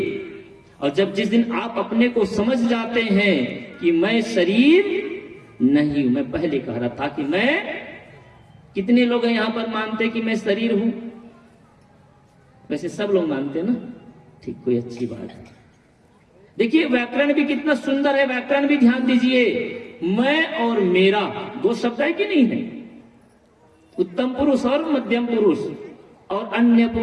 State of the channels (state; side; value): identical; both; correlation 1.00